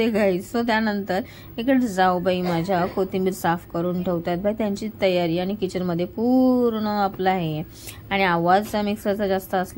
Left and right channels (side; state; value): both; identical; correlation 1.00